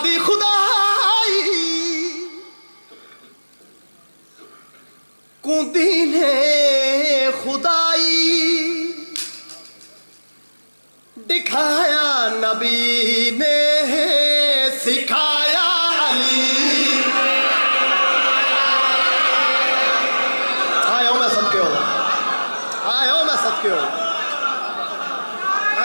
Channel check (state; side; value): inverted; both; correlation -1.00